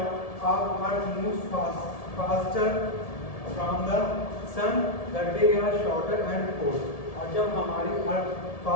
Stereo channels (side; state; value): right; late; 1.7 ms